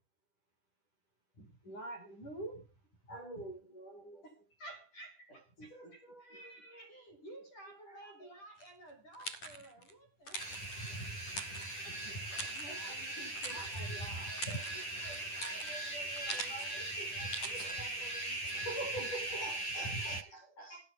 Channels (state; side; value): late; right; 10 ms